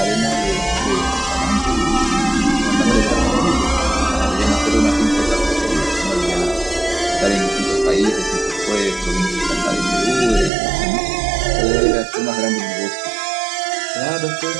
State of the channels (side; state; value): left; drops out; at 10.5 s